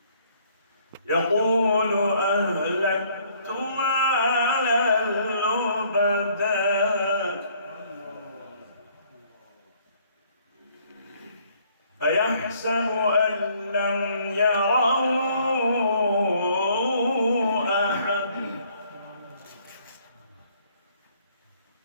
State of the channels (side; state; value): both; inverted; correlation -0.63